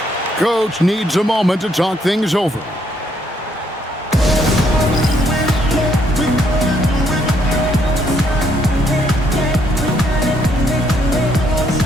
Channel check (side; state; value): both; normal; correlation 0.71